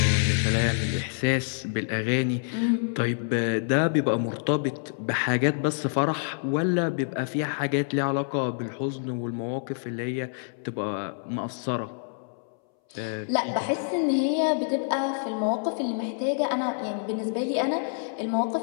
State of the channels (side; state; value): right; silent; 60 dB below the other